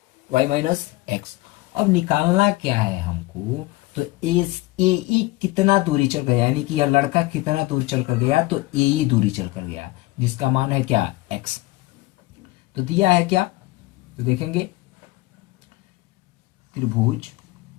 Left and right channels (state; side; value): quieter; right; 19.9 dB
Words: y minus x. अब निकालना क्या है हमको, तो ए ई कितना दूरी चल गया यानी कि यह लड़का कितना दूर चल कर गया, तो ए ई दूरी चल कर गया जिसका मान है क्या एक्स। तो दिया है क्या, तो देखेंगे त्रिभुज,